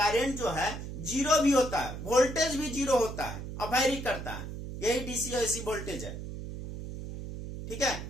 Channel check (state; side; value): noise; right; hum, 8 dB below the sound